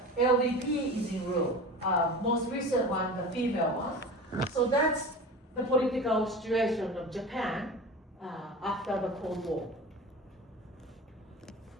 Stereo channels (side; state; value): both; normal; correlation 0.33